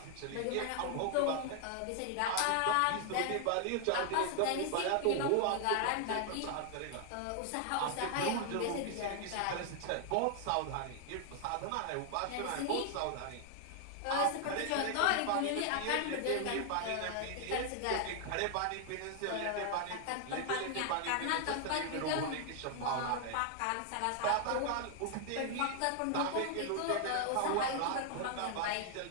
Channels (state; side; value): different; both; correlation 0.00